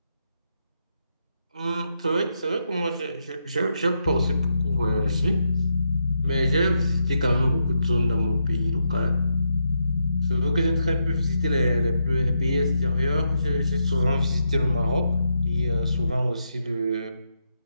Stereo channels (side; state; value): both; inverted; correlation -0.82